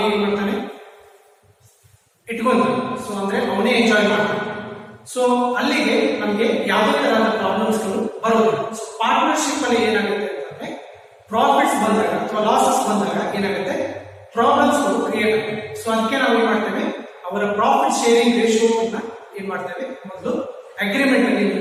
ಏನ್ ಮಾಡ್ತಾನೆ, ಇಟ್ಕೊಂತಾನೆ. ಸೊ ಅಂದ್ರೆ ಅವನೇ ಎಂಜಾಯ್ ಮಾಡ್ತಾನೆ. ಸೊ ಅಲ್ಲಿಗೆ ನಮಗೆ ಯಾವುದೇ ತರಹದ ಪ್ರಾಬ್ಲಮ್ಸ್ ಗಳು ಬರೋದಿಲ್ಲ. ಸೊ ಪಾರ್ಟ್ನರ್ಶಿಪ್ ಅಲ್ಲಿ ಏನಾಗುತ್ತೆ ಅಂತಂದ್ರೆ, ಪ್ರಾಫಿಟ್ಸ್ ಬಂದಾಗ ಅಥವಾ ಲಾಸಸ್ ಬಂದಾಗ ಏನಾಗುತ್ತೆ, ಪ್ರಾಬ್ಲಮ್ಸ್ ಗಳು ಕ್ರಿಯೇಟ್ ಆಗುತ್ತೆ. ಸೊ ಅದಕ್ಕೆ ನಾವು ಏನ್ ಮಾಡ್ತೇವೆ, ಅವರ ಪ್ರಾಫಿಟ್ ಶೇರಿಂಗ್ ರೇಷಿಯೋ ಅನ್ನ ಏನ್ ಮಾಡ್ತೇವೆ, ಮೊದಲು ಅಗ್ರಿಮೆಂಟ್ ಅಲ್ಲಿ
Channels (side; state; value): both; identical; correlation 1.00